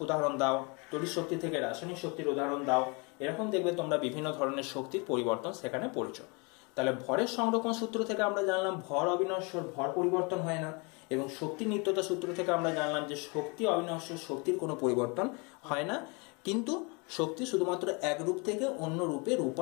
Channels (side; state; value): right; quieter; 30.8 dB